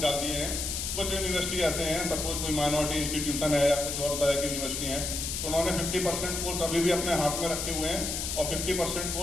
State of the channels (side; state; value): left; noise; hiss, 3 dB below the sound